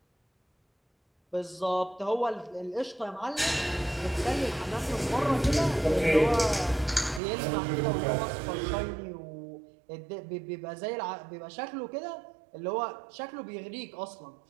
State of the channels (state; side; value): drops out; left; at 7.2 s